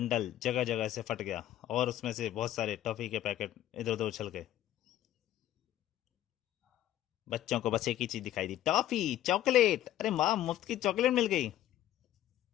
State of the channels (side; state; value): right; quieter; 12.9 dB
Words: जगह जगह से फट गया और उसमें से बहुत सारे टॉफी के पैकेट इधर उधर उछल गए। बच्चों को बस एक ही चीज दिखाई दी, टॉफी चॉकलेट। अरे माँ, मुफ्त की चॉकलेट मिल गई।